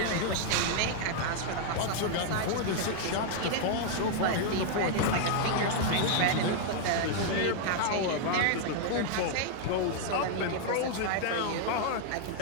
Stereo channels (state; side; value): different; both; correlation 0.00